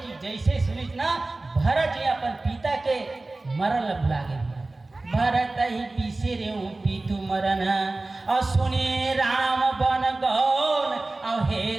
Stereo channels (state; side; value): quieter; left; 3.1 dB